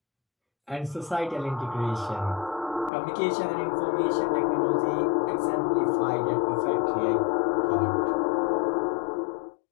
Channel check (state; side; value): drops out; right; at 2.9 s